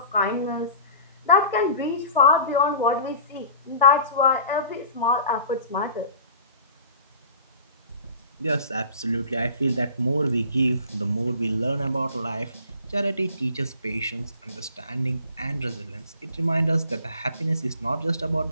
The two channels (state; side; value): inverted; both; correlation -0.43